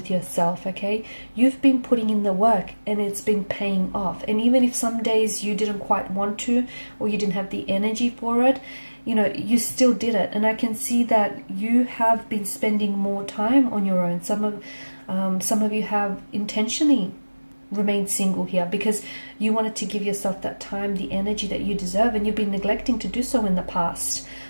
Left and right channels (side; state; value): both; inverted; correlation -1.00